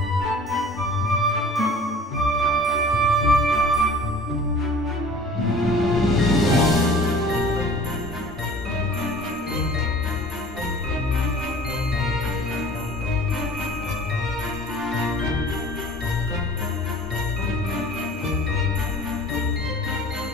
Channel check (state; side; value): normal; both; correlation 0.46